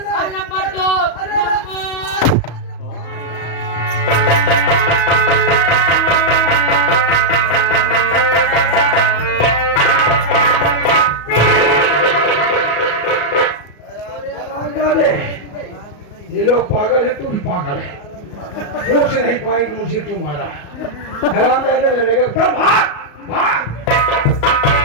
और नंबर 2 ये लोग पागल है, तू भी पागल है। पूछ नहीं पाएंगे मुझे क्यों मारा। हराम जाने लगेगा तो भाग भाग।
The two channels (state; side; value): late; right; 34 ms